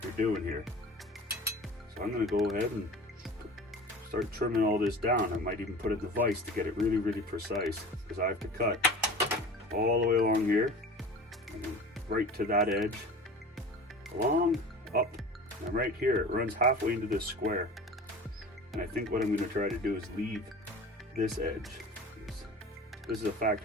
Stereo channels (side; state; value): both; normal; correlation 0.38